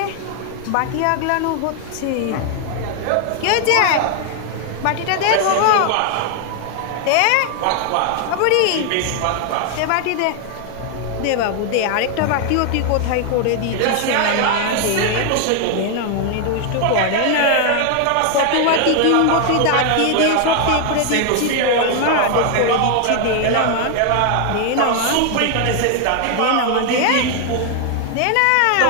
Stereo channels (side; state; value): both; different; correlation 0.00